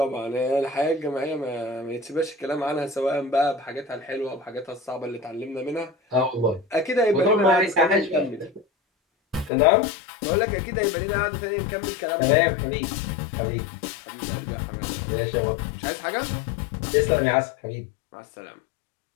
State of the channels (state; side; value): drops out; right; at 9.5 s